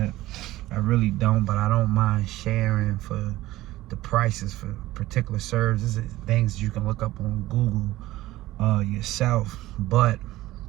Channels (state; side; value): quieter; left; 16.7 dB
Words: I really don't, but I don't mind sharing for the prices for particular services, things you can look up on Google yourself. But